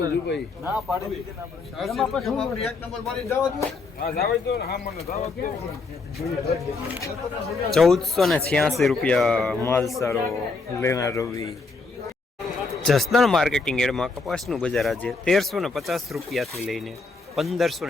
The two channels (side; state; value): right; quieter; 4.0 dB